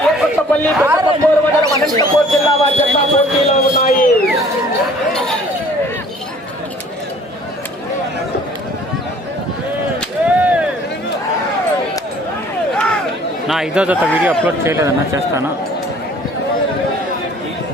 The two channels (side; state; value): both; normal; correlation 0.53